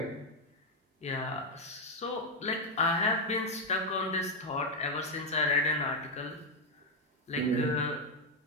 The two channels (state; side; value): normal; both; correlation 0.03